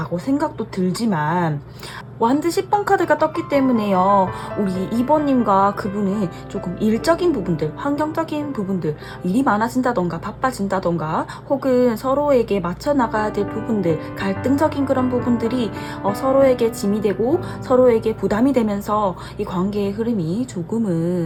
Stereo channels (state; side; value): identical; both; correlation 1.00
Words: 생각도 들지만, 완드 10번 카드가 떴기 때문에요, 우리 2번님과 그분은 조금 일적인 부분들, 환경적인 부분들, 일이 많아진다던가 바빠진다던가 혹은 서로에게 맞춰 나가야 될 부분들, 갈등적인 그런 부분들이 서로에게 짐이 되고 서로에게 부담이 되면서 이 관계의 흐름이